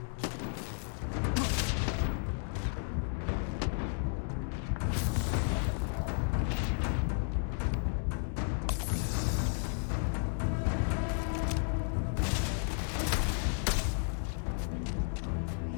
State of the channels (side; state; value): right; silent; 56 dB below the other